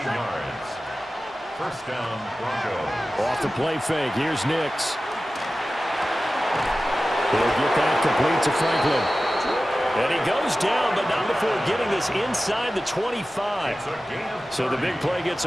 yards. First down, Broncos. Off the play fake. Here's Nix. He'll get that complete to Franklin. And he goes down, but not before getting this inside the 25. So the big play gets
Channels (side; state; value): both; normal; correlation 0.95